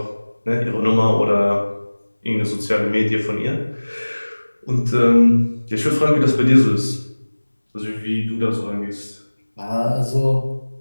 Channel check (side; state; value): both; inverted; correlation -1.00